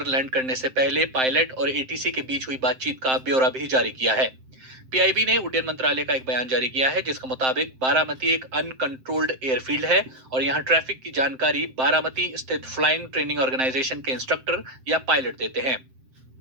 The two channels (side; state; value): left; late; 7.7 ms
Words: लैंड करने से पहले पायलट और एटीसी के बीच हुई बातचीत का ब्यौरा भी जारी किया है। पीआईबी ने उड्डयन मंत्रालय का एक बयान जारी किया है जिसके मुताबिक बारामती एक अनकंट्रोल्ड एयरफील्ड है और यहाँ ट्रैफिक की जानकारी बारामती स्थित फ्लाइंग ट्रेनिंग ऑर्गेनाइजेशन के इंस्ट्रक्टर या पायलट देते हैं।